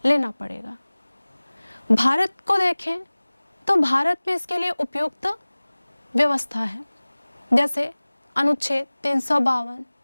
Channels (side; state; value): both; inverted; correlation -1.00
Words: लेना पड़ेगा। भारत को देखें तो भारत में इसके लिए उपयुक्त व्यवस्था है, जैसे अनुच्छेद 352,